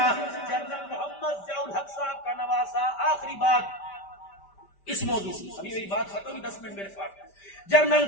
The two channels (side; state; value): right; late; 5.1 ms